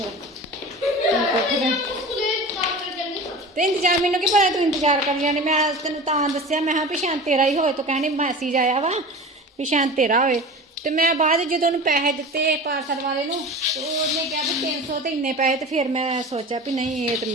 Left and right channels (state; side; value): normal; both; correlation 0.34